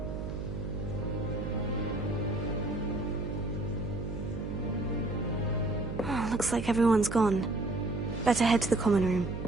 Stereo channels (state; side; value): noise; right; hum, 6 dB below the sound